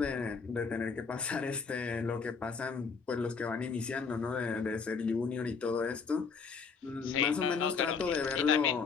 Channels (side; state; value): right; quieter; 5.4 dB